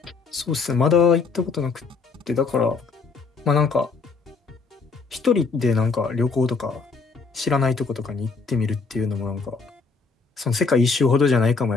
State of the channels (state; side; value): quieter; right; 4.6 dB